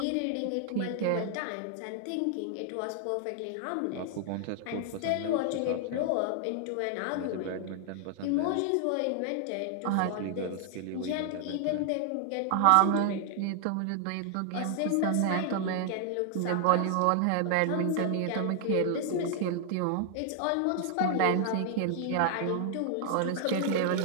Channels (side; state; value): both; different; correlation 0.00